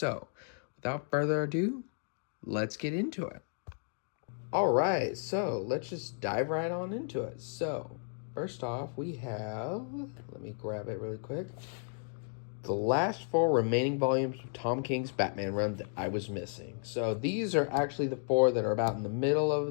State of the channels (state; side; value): silent; right; 55 dB below the other